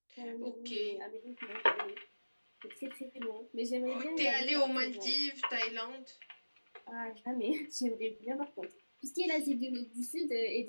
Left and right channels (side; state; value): both; inverted; correlation -1.00